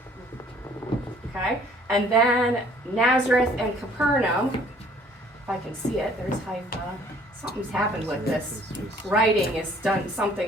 Okay? And then Nazareth and Capernaum, if I can see it, there's Haifa. Something's happened with this. Writing is done,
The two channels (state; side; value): normal; both; correlation 0.57